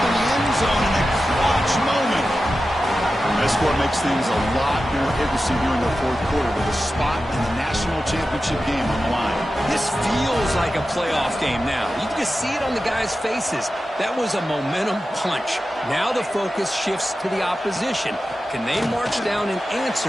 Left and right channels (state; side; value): normal; both; correlation 0.93